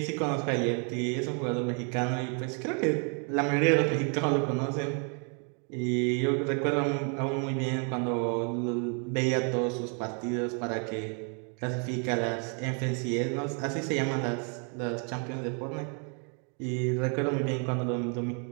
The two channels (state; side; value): quieter; left; 39.1 dB